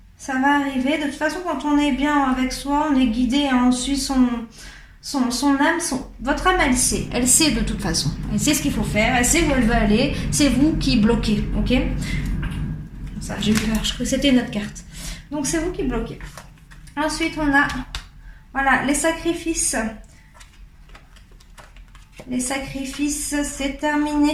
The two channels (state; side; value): identical; both; correlation 1.00